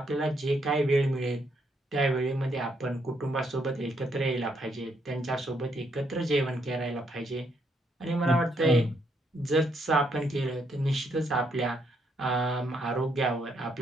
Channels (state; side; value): normal; both; correlation 0.74